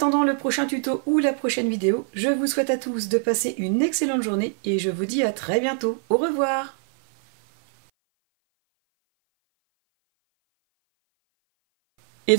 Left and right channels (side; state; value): left; silent; 58 dB below the other